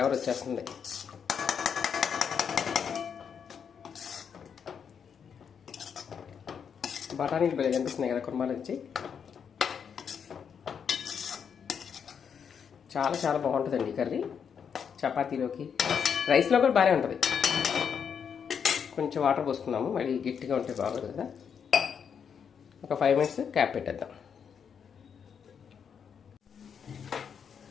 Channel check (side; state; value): right; quieter; 7.2 dB